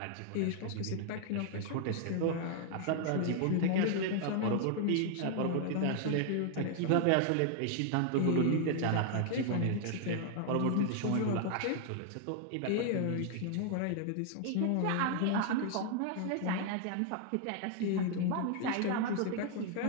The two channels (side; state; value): both; different; correlation 0.00